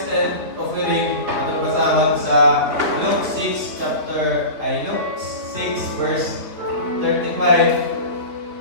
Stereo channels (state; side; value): late; left; 3.7 ms